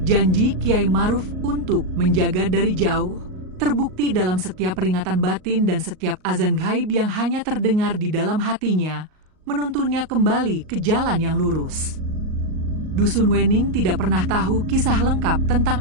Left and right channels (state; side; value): late; left; 38 ms